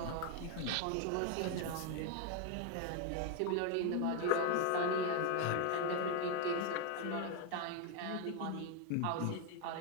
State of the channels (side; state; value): both; different; correlation 0.01